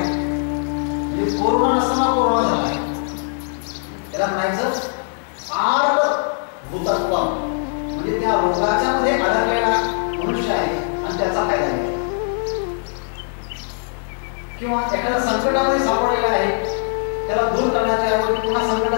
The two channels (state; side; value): silent; right; digital silence